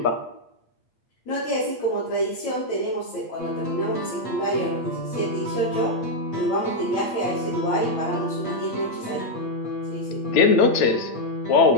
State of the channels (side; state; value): right; late; 8.5 ms